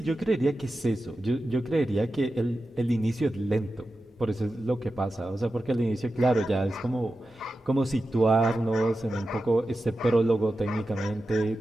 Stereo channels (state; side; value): normal; both; correlation 0.92